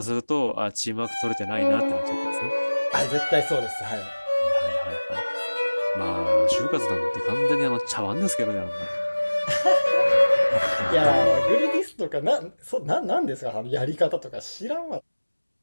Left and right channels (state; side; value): inverted; both; correlation -1.00